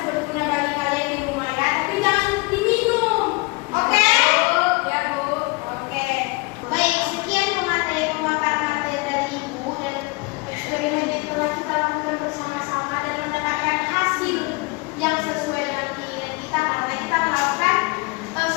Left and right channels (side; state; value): right; quieter; 27.3 dB